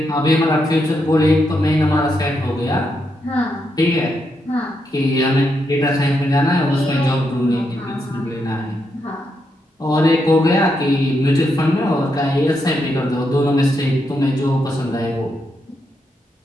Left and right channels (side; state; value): both; normal; correlation 0.81